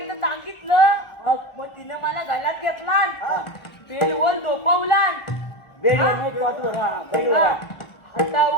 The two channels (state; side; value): late; right; 1.4 ms